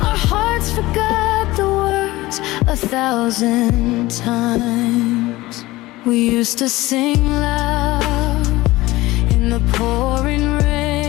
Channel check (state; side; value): quieter; right; 18.9 dB